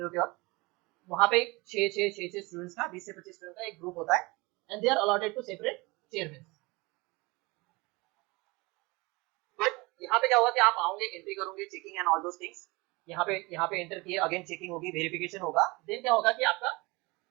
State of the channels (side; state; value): left; quieter; 24.5 dB